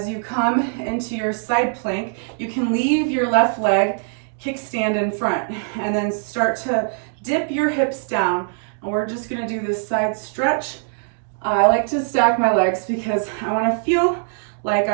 you come into your side plank, you can leave your left leg kickstand in front and then start to dip your hips down. And we're just gonna do this side stretch. I like to stack my legs because I wanna feel like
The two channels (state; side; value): silent; left; 65 dB below the other